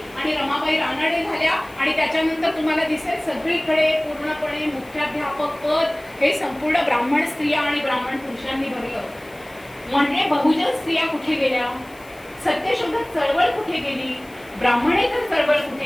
आणि रमाबाई रानडे झाल्या आणि त्याच्यानंतर तुम्हाला दिसेल सगळीकडे पूर्णपणे मुख्याध्यापक पद हे संपूर्ण ब्राह्मण स्त्रिया आणि ब्राह्मण पुरुषांनी भरलं. म्हणजे बहुजन स्त्रिया कुठे गेल्या, सत्यशोधक चळवळ कुठे गेली, ब्राह्मणेतर चळवळ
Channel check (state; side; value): noise; left; hiss, 26 dB below the sound